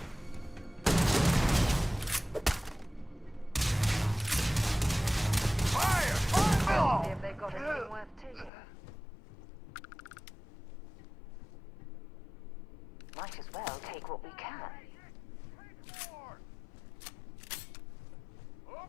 Fire! See if they've got anything worth taking. Might as well take what we can.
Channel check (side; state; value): right; drops out; at 8.5 s